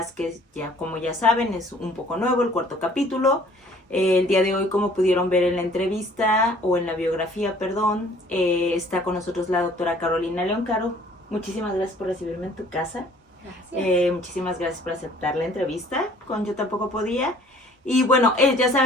que como ya saben, es un poco nuevo, el cuarto capítulo. El día de hoy, como pudieron ver en la entrevista o en la biografía, está con nosotros la doctora Carolina León. Caro, muchísimas gracias por recibirme en tu casa. Muchísimas gracias por aceptar la entrevista con Yo Tampoco Podía. Y bueno, ya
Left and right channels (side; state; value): both; normal; correlation 0.55